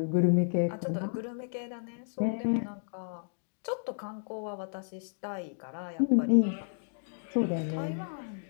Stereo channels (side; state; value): right; silent; digital silence